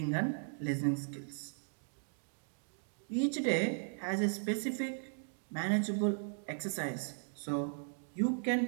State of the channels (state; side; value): silent; left; digital silence